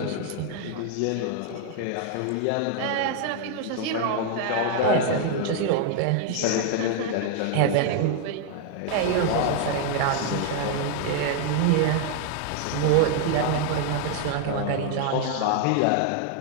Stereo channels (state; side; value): different; both; correlation 0.00